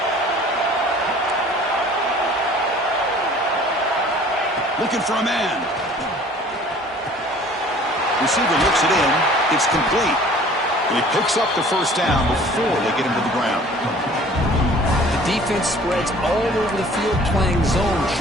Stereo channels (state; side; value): normal; both; correlation 0.50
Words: Looking for a man. Receiver looks it in. It's complete. And he picks up the first down before they get him to the ground. The defense spreads all over the field playing zone,